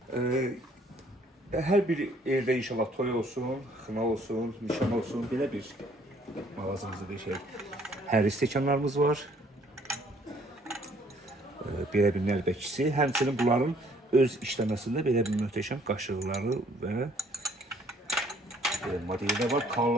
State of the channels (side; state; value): both; normal; correlation 0.62